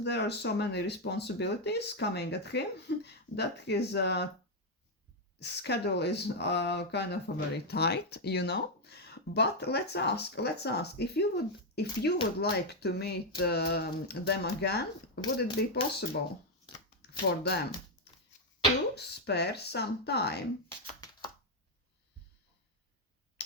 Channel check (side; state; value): both; normal; correlation 0.01